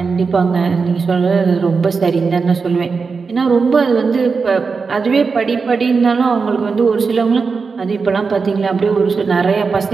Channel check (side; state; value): left; quieter; 4.9 dB